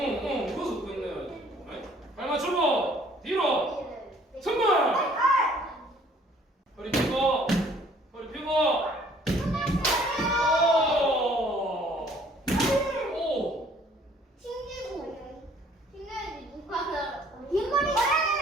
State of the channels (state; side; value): normal; both; correlation 0.58